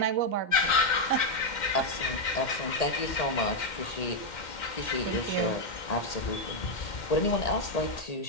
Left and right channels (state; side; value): late; right; 2.1 ms